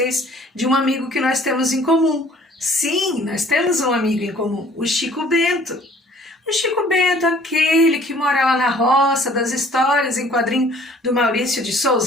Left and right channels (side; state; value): both; normal; correlation 0.55